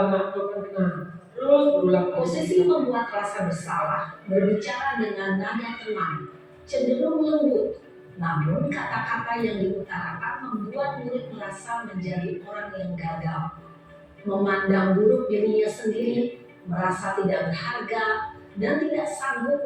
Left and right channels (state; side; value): identical; both; correlation 1.00